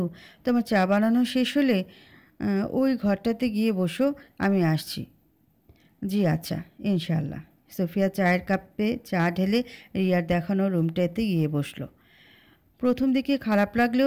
তোমার চা বানানো শেষ হলে ওই ঘরটাতে গিয়ে বসো, আমি আসছি। জি আচ্ছা, ইনশাআল্লাহ। সোফিয়া চায়ের কাপে চা ঢেলে রিয়ার দেখানো রুমটাতে গিয়ে বসলো। প্রথম দিকে খারাপ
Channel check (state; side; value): identical; both; correlation 1.00